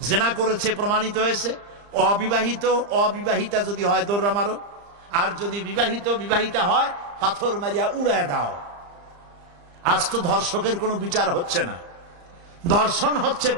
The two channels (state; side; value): late; left; 35 ms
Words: জিনা করেছে, প্রমাণিত হয়েছে, অবিবাহিত, অবিবাহিতা যদি হয় দোররা মারো, আর যদি বিবাহিত, বিবাহিতা হয় পাথর মারিয়া উড়ায় দাও। আজ তো ধর্ষকের কোনো বিচার হচ্ছে না। ধর্ষণ হচ্ছে